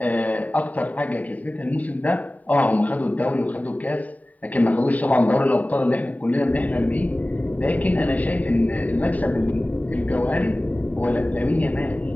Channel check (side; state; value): right; late; 0.072 ms